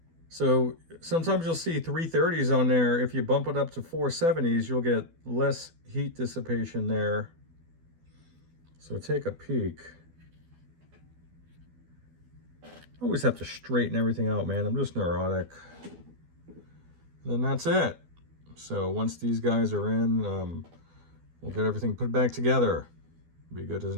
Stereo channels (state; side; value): late; left; 12 ms